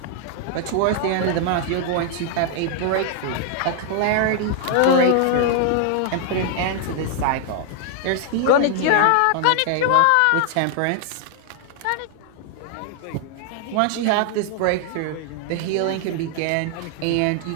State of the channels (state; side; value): different; both; correlation 0.00